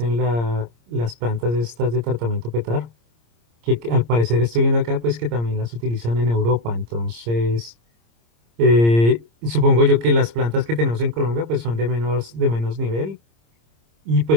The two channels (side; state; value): left; late; 26 ms